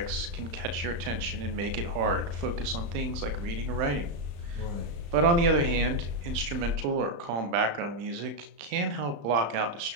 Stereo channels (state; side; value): late; left; 35 ms